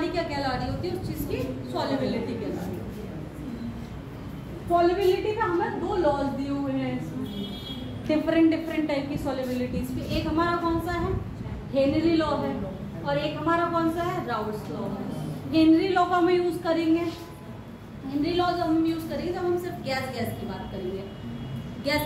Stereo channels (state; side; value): identical; both; correlation 1.00